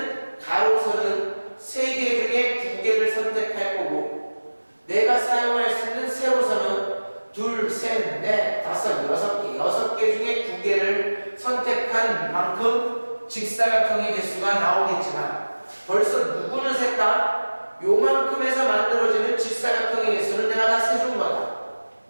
가로선은 3개 중에 2개를 선택할 거고, 내가 사용할 수 있는 세로선은 둘, 셋, 넷, 다섯, 6개, 6개 중에 2개를 선택한 만큼 직사각형의 개수가 나오겠지만, 벌써 누구는 셌다? 요만큼에서 만들어지는 직사각형의 개수는 내가 다 세준 거다.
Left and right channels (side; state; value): both; inverted; correlation -1.00